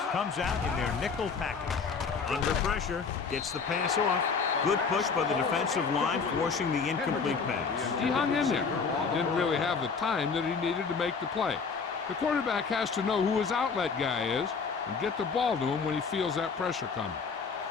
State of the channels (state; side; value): quieter; right; 5.3 dB